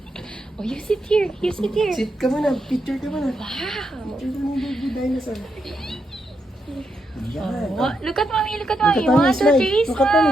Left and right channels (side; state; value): both; normal; correlation 0.82